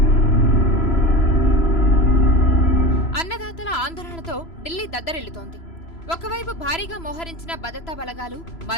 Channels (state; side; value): late; right; 3.0 ms